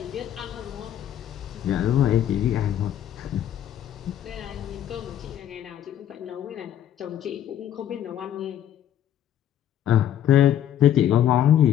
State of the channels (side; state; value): right; quieter; 10.7 dB